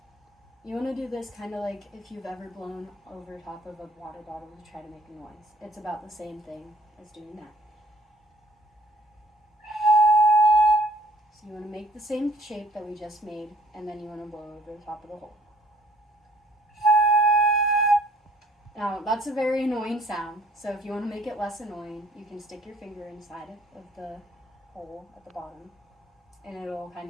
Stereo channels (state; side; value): normal; both; correlation 0.57